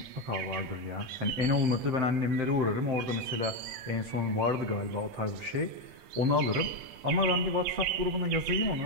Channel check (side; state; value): left; late; 8.7 ms